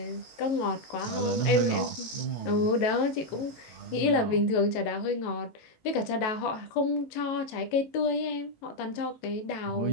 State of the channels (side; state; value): right; late; 18 ms